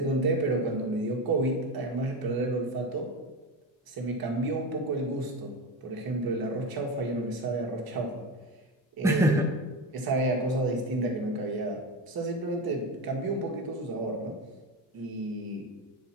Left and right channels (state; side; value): normal; both; correlation 0.21